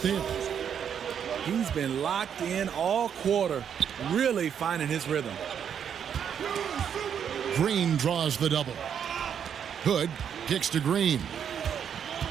there. He's been locked in all quarter, really finding his rhythm. Green draws the double. Hood kicks to Green.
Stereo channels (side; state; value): left; quieter; 8.2 dB